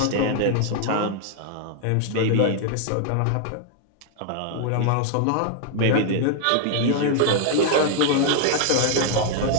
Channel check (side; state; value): both; different; correlation 0.00